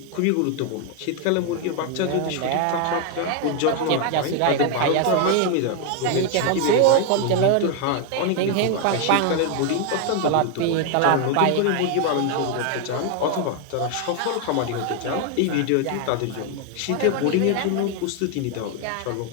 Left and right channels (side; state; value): both; different; correlation 0.00